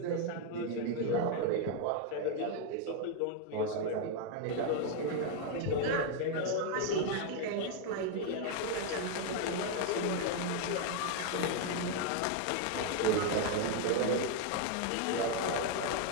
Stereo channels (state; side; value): different; both; correlation 0.01